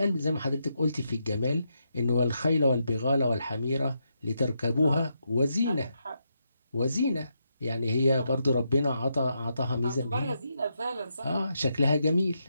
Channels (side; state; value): both; inverted; correlation -0.82